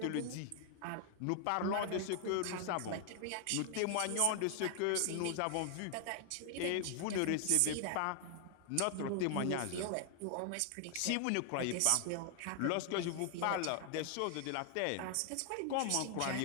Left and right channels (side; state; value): both; different; correlation 0.00